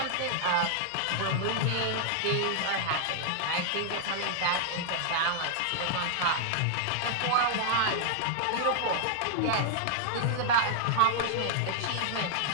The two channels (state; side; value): different; both; correlation -0.01